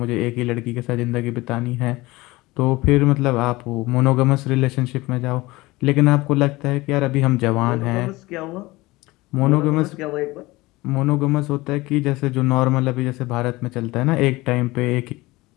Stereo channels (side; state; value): right; quieter; 20.6 dB